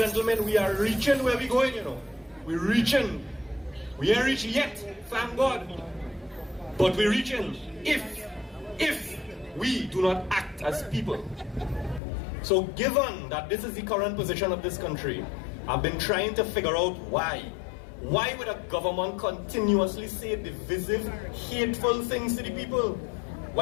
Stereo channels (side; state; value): right; drops out; at 12.0 s